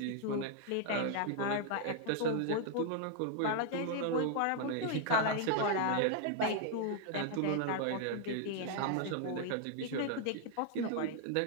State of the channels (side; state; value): both; different; correlation 0.00